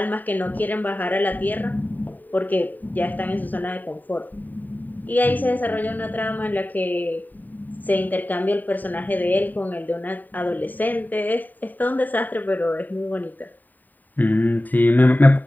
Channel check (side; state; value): right; late; 0.087 ms